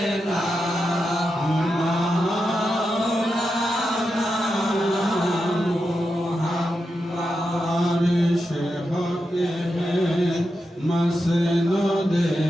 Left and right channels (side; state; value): both; normal; correlation 0.88